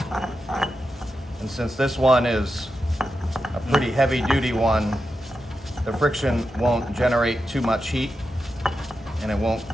And since this one is a pretty heavy duty one, the friction won't generate too much heat and it won't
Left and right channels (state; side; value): normal; both; correlation 0.89